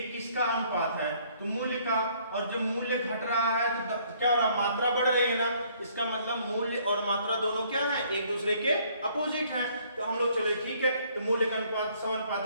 किसका अनुपात है, तो मूल्य का। और जब मूल्य घट रहा है तो क्या हो रहा है, मात्रा बढ़ रही है ना। इसका मतलब मूल्य और मात्रा दोनों क्या है, एक दूसरे के अपोजिट है। तो हम लोग चले ठीक है, तो मूल्य का अनुपात 100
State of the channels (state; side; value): inverted; both; correlation -0.63